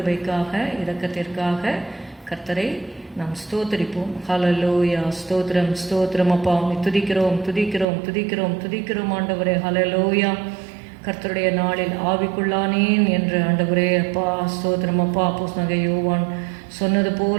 இரக்கத்திற்காக கர்த்தரை நாம் ஸ்தோத்தரிப்போம். ஹல்லேலூயா. ஸ்தோத்திரம் ஸ்தோத்திரம் அப்பா, துதிக்கிறோம் துதிக்கிறோம் துதிக்கிறோம் துதிக்கிறோம் ஆண்டவரே. ஹல்லேலூயா. கர்த்தருடைய நாளில் ஆவிக்குள்ளானேன் என்று ஆண்டவரே அப்பா ஸ்தோத்திரம் அப்பா. அப்போஸ்தலனாகிய யோவான் சொன்னது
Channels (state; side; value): drops out; left; at 7.9 s